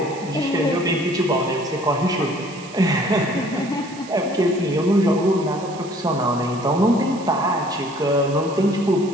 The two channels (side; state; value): right; noise; hiss, 19 dB below the sound